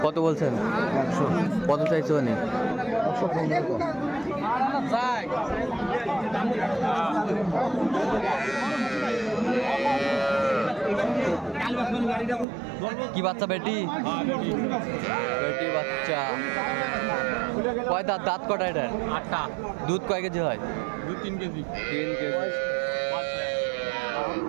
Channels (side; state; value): left; drops out; at 12.5 s